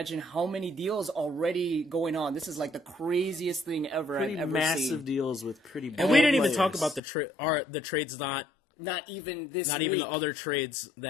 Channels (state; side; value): drops out; right; at 7.0 s